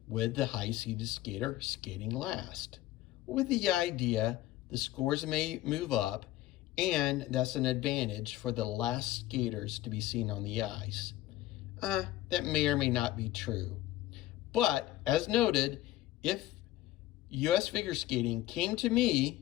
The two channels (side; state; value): right; quieter; 15.6 dB